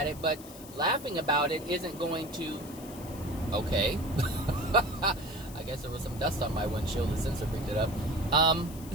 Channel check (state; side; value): noise; left; hiss, 17 dB below the sound